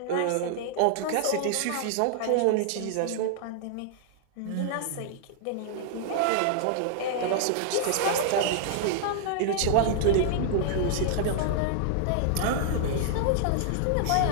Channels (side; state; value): both; different; correlation -0.01